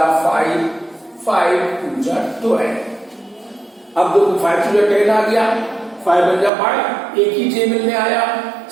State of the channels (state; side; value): drops out; left; at 6.5 s